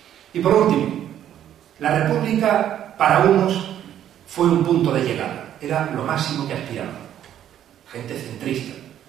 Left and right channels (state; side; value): quieter; left; 10.8 dB